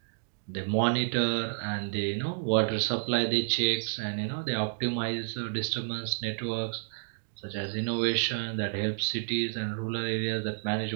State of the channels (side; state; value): left; silent; digital silence